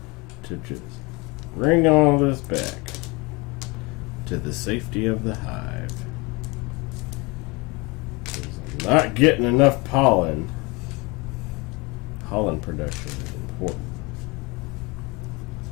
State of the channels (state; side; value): quieter; right; 26.3 dB